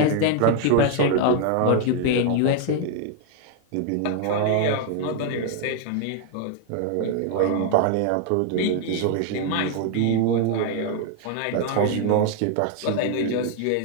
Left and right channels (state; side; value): different; both; correlation 0.00